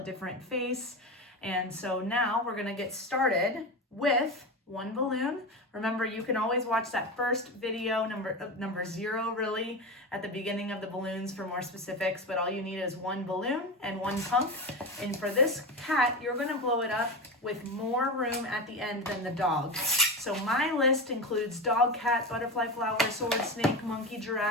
face. And so now we're gonna get started with one balloon. Remember, you can always watch that first video, number 0 really, at the beginning of the balloons for more specifics, but all you need is one balloon and one pump. And for this cat, you're gonna blow it up with more room at the end than the dog. So my list includes dog, cat, butterfly, flower, sword, snake, monkey,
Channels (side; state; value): both; normal; correlation 0.21